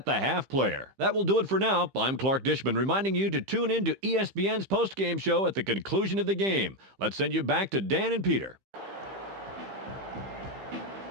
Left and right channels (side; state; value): left; late; 15 ms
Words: the Half player. That will do it for now. I'm Clark Dishman reminding you to tune in to ESPN's post-game show at the conclusion of the game. Let's send you back to Dan and Peter.